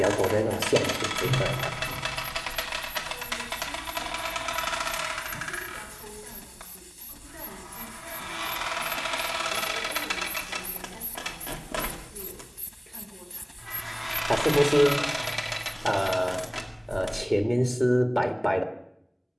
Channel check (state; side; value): identical; both; correlation 1.00